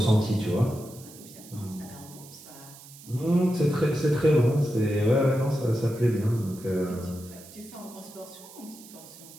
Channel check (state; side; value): noise; right; hiss, 19 dB below the sound